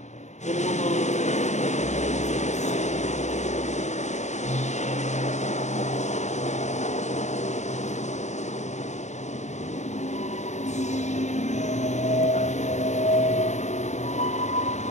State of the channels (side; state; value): right; late; 0.34 ms